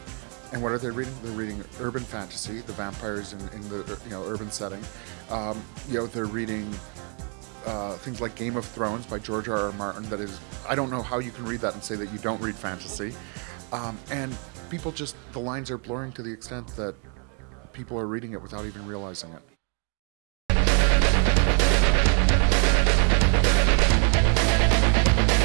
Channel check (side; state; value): left; quieter; 38.9 dB